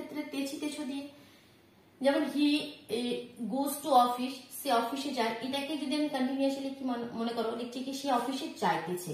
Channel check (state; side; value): identical; both; correlation 1.00